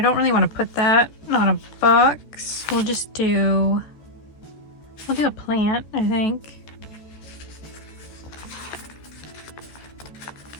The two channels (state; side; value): late; right; 13 ms